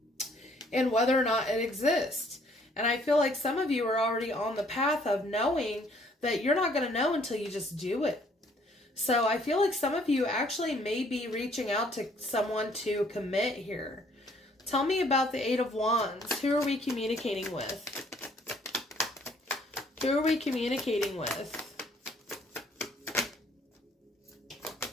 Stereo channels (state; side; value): normal; both; correlation 0.62